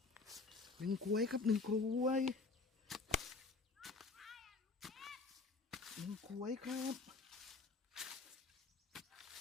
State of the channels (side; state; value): right; quieter; 4.0 dB